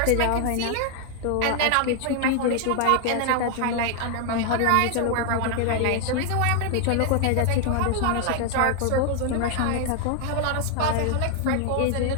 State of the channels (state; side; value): different; both; correlation 0.00